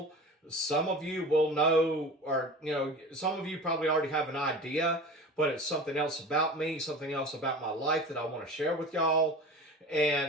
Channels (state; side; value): normal; both; correlation 0.36